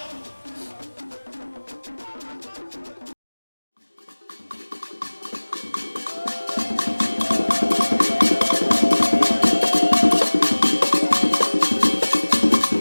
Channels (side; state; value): both; inverted; correlation -1.00